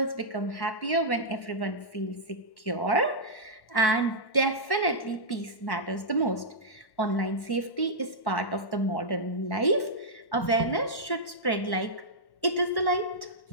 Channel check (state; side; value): late; right; 1.1 ms